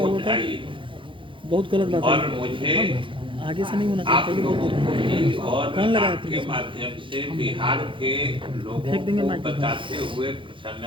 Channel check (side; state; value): left; late; 0.25 ms